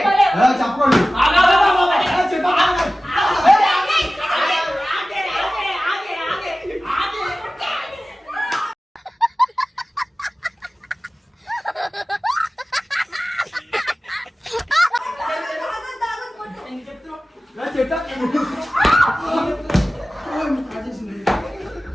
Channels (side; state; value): both; normal; correlation 0.96